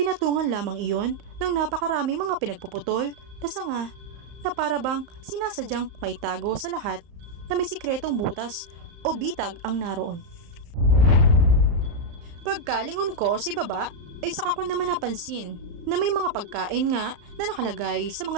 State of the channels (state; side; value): late; left; 34 ms